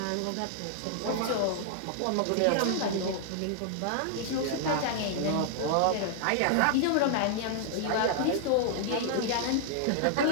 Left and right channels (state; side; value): different; both; correlation -0.01